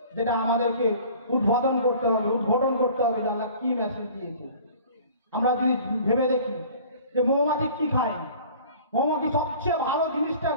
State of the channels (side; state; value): both; inverted; correlation -0.47